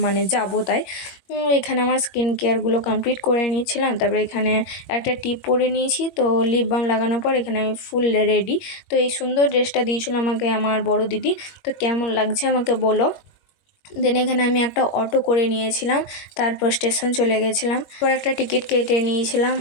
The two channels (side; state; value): right; late; 21 ms